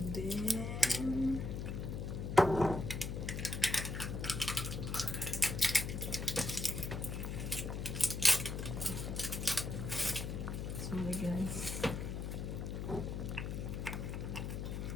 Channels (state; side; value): noise; left; hum, 4 dB below the sound